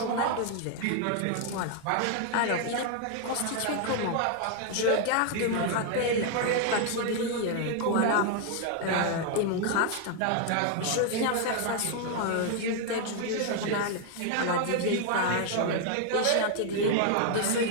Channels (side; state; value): both; different; correlation 0.00